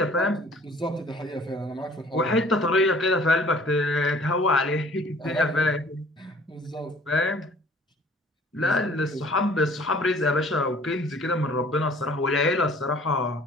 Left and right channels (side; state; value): both; normal; correlation 0.53